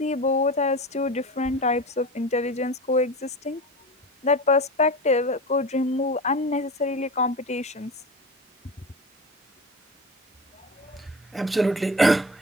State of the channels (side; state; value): both; normal; correlation 0.29